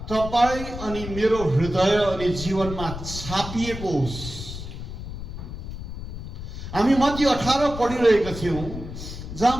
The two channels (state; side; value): noise; left; rumble, 9 dB below the sound